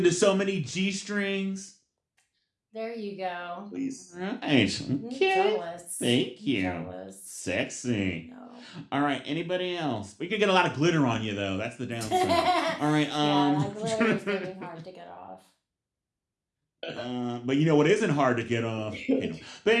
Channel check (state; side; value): identical; both; correlation 1.00